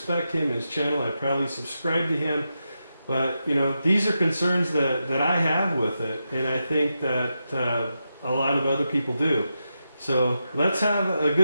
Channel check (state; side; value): inverted; both; correlation -0.87